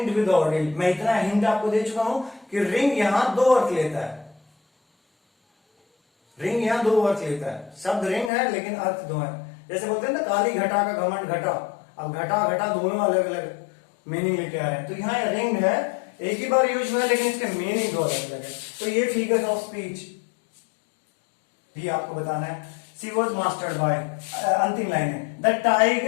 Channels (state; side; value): drops out; right; at 8.3 s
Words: विद ऑर्डिल, मैं इतना हिंट आपको दे चुका हूं कि रिंग यहां दो अर्थ लेता है, रिंग यहां दो अर्थ लेता है, शब्द रिंग है लेकिन अर्थ दो है। जैसे बोलते हैं ना काली घटा का घमंड घटा, अब घटा घटा दोनों अलग अलग मीनिंग लेके आ रहे हैं, तो यहाँ रिंग है, एक ही बार यूज हुआ है लेकिन इसके मीनिंग दो अलग अलग है। तो ये फिगर्स ऑफ स्पीच भी आपको बताना है। शी वॉज मास्टर्ड बाय, अंतिम लाइन है, the